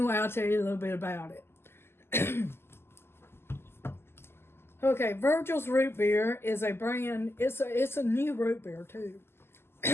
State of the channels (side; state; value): right; late; 0.12 ms